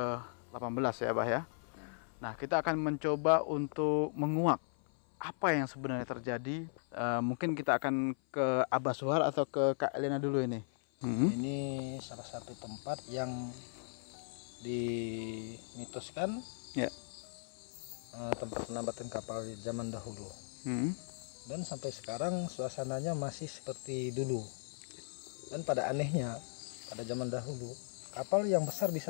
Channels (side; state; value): right; silent; 53 dB below the other